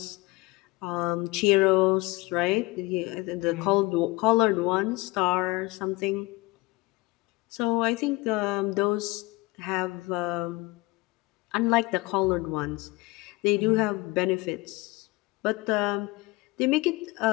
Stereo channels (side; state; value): right; quieter; 22.0 dB